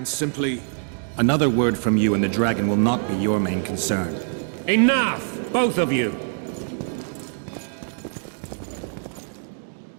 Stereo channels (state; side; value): silent; left; digital silence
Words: simply... Another word from you and the dragon will not be your main concern. Enough! Both of you!